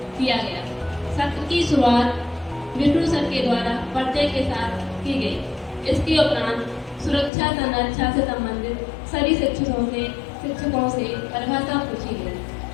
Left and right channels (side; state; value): right; drops out; at 7.3 s